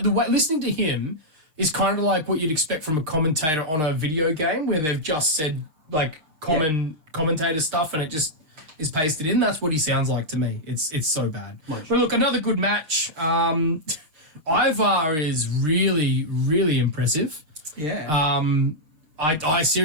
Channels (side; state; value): left; late; 6.4 ms